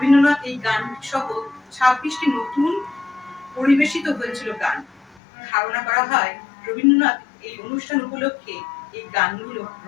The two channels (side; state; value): right; drops out; at 5.2 s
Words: এই গান সহ 26টি নতুন পরিবেশিত হয়েছিল গান। ধারণা করা হয় রবীন্দ্রনাথ এই অনুষ্ঠান উপলক্ষে এই গানগুলো